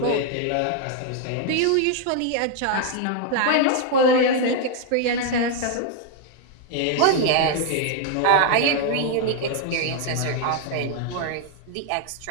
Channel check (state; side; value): different; both; correlation 0.00